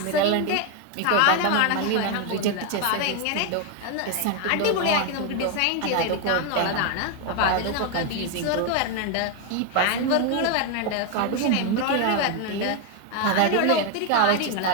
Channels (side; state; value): both; different; correlation 0.01